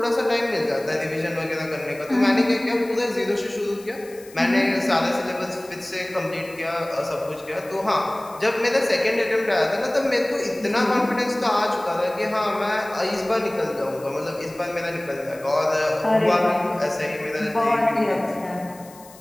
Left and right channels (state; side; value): noise; left; hiss, 22 dB below the sound